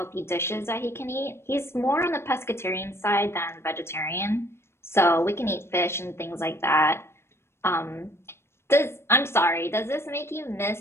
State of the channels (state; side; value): late; right; 0.12 ms